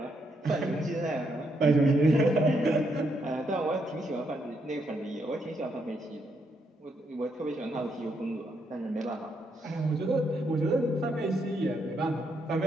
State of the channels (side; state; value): both; normal; correlation 0.77